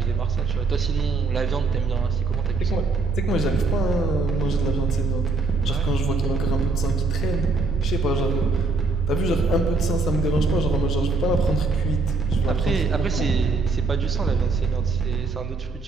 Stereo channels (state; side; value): quieter; left; 3.5 dB